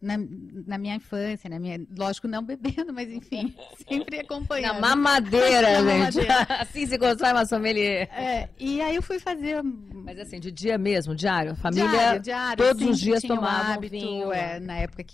na minha infância, lógico, não bebendo, mas enfim, sempre acompanhando. Na mamadeira, na gente. mamadeira. Assim se constrói uma sommelier. E aí eu fui fazer... Mas assim, de dia mesmo, diário? A família diário, todos os dias tinha tomava um hábito, vinho. Na época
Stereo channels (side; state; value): right; quieter; 4.3 dB